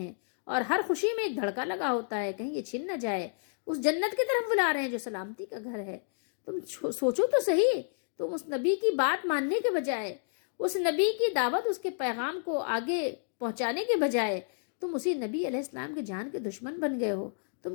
اور ہر خوشی میں ایک دھڑکا لگا ہوتا ہے کہیں یہ چھن نہ جائے۔ اس جنت کی طرف بلا رہے ہیں جو سلامتی کا گھر ہے۔ تم سوچو تو صحیح، تم اس نبی کی بات ماننے کے بجائے، اس نبی کی دعوت، اس کے پیغام کو آگے پہنچانے کے بجائے تم اسی نبی علیہ السلام کے جان کے دشمن بن گئے ہو۔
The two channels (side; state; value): right; silent; digital silence